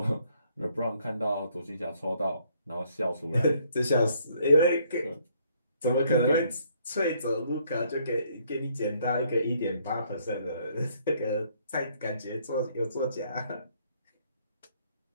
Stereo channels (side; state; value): both; inverted; correlation -0.67